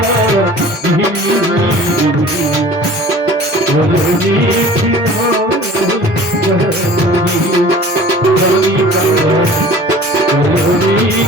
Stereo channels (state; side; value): normal; both; correlation 0.45